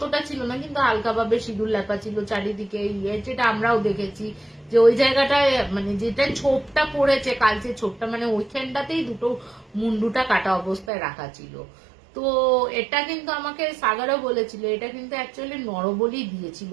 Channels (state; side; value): drops out; left; at 10.9 s